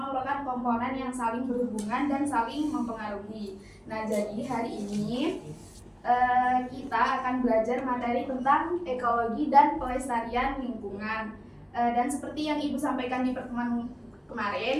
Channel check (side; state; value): both; identical; correlation 1.00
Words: merupakan komponen yang saling berhubungan dan saling mempengaruhi. Nah, jadi hari ini kita akan belajar materi tentang ekologi dan pelestarian lingkungan. Dan seperti yang Ibu sampaikan di pertemuan